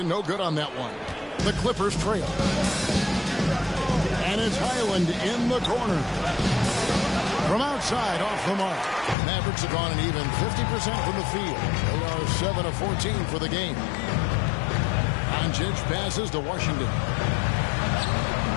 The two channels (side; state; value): right; drops out; at 9.2 s